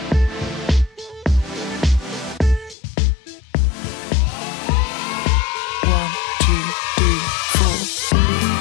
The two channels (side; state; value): right; drops out; at 2.8 s